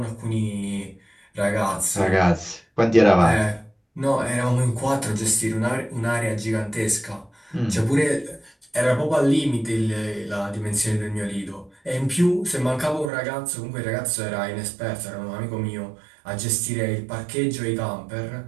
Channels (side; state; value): left; drops out; at 13.1 s